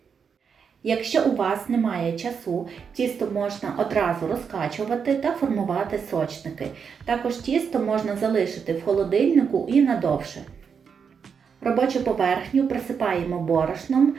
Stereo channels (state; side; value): quieter; left; 6.5 dB